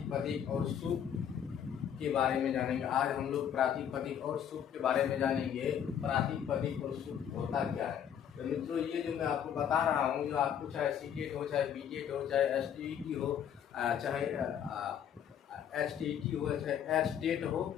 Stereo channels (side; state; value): right; quieter; 9.0 dB